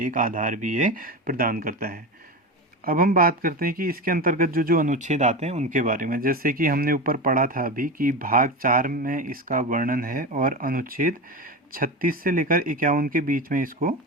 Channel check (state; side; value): normal; both; correlation 0.23